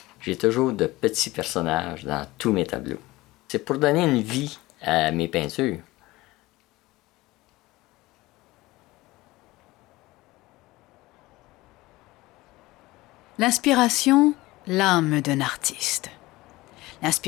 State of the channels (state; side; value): quieter; right; 19.5 dB